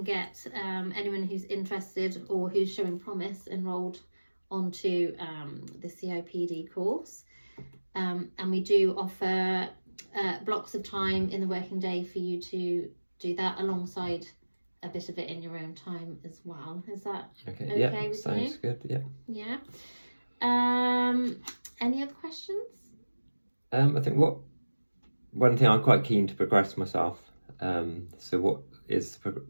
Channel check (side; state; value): both; inverted; correlation -1.00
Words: get anyone who's interested or who's showing promise enrolled onto the CIPD course. And we do offer blocks of time in the working day for you to do that alongside a bit of it in your own time as well. Is that okay yeah, with sounds you? Good, yeah. Yeah. Any other questions? I think one thing I'm quite keen to progress myself. So what is